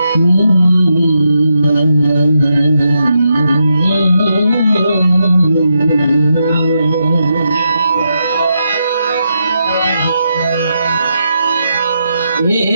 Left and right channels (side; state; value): both; inverted; correlation -0.83